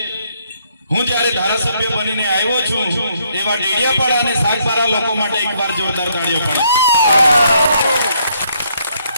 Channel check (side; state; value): both; inverted; correlation -0.71